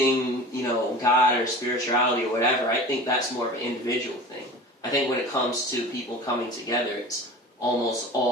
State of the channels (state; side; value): normal; both; correlation 0.37